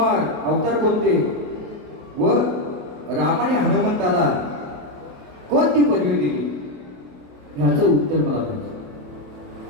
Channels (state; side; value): late; left; 28 ms